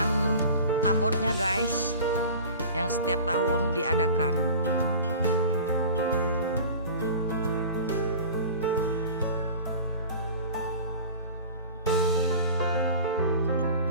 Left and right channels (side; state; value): both; inverted; correlation -0.39